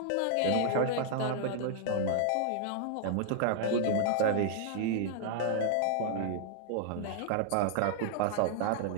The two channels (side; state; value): both; different; correlation -0.01